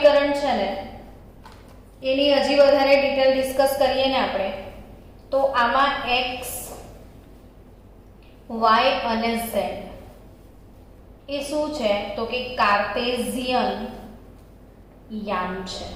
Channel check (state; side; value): identical; both; correlation 1.00